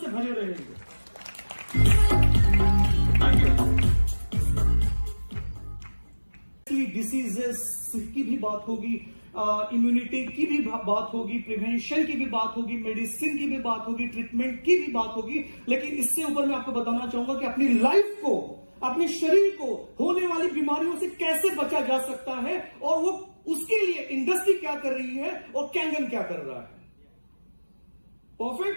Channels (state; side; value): inverted; both; correlation -1.00